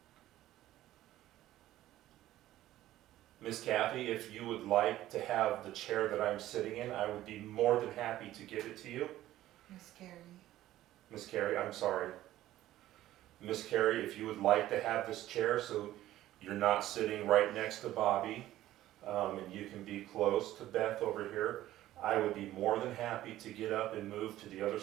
Miss Kathy, if you would like to have the chair that I'm sitting in, I would be more than happy to give it to you. Miss Carrie. Miss Carrie, I'm sorry. Miss Carrie, if you would like to have this chair so you're not sitting right next to Bobby, and you can be close to Beth over here, I would be more than happy to get up and move to the other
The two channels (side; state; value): left; quieter; 14.3 dB